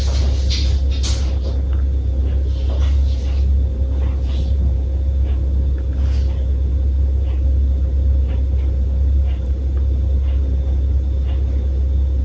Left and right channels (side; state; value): both; identical; correlation 1.00